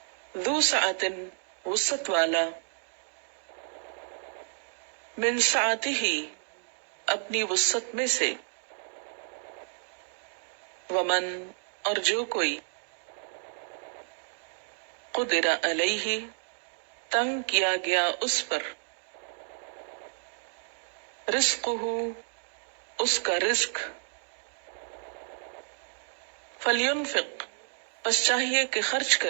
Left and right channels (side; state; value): left; silent; digital silence